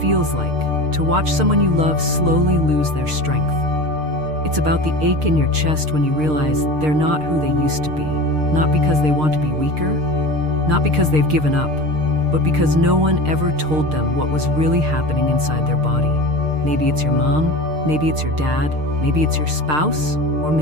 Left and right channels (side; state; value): left; late; 6.6 ms